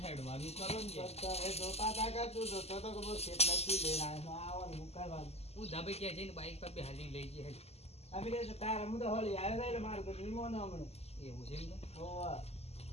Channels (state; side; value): late; right; 0.30 ms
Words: હેડવાનું કરો ને. હું ધાબે ક્યાં જઈને બાઈક પર બેહાડીને લઈ જઈએ એવું છે એમ તો